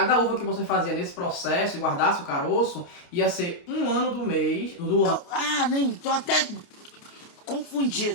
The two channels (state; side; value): late; right; 29 ms